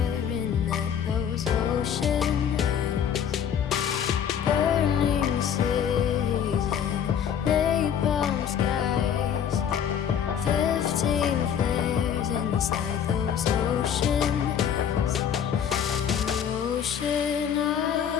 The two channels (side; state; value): right; quieter; 8.4 dB